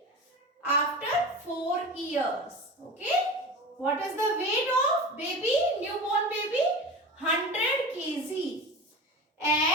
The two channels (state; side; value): normal; both; correlation 0.30